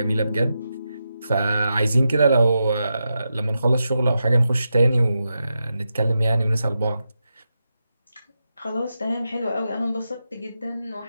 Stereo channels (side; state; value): both; inverted; correlation -0.88